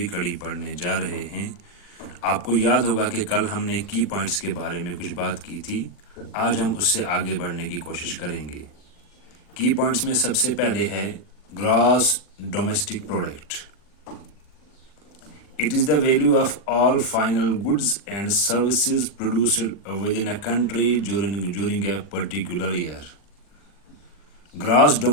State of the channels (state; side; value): late; right; 40 ms